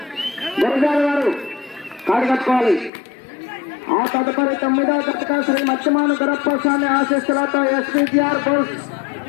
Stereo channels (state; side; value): drops out; right; at 2.9 s